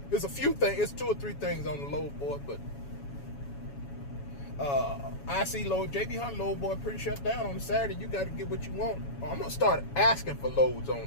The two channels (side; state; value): right; late; 7.2 ms